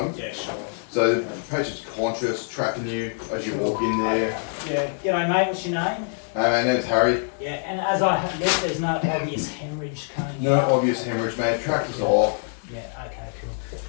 Yeah, sure. So the patient's conscious, tracking you as you walk in there. Yeah. G'day, mate. What's your name? My name's Harry. Yeah, and as I have looked, there's no obvious hemorrhage coming No out. obvious hemorrhage, mate. Tractor's off. Yeah, okay, cool.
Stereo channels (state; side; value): silent; right; 62 dB below the other